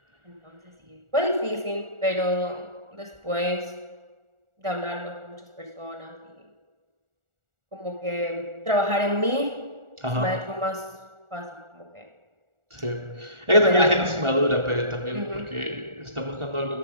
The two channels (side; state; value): left; late; 1.4 ms